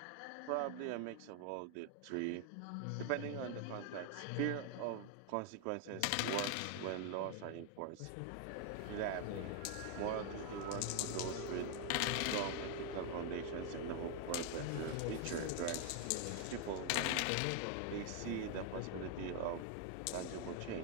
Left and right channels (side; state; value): both; different; correlation 0.00